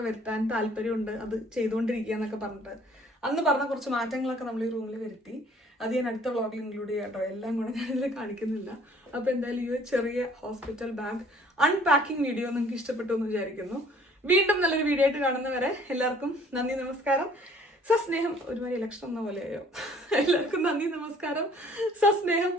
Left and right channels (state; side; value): normal; both; correlation 0.56